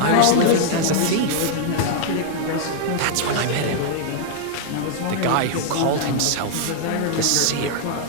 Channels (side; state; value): both; different; correlation -0.01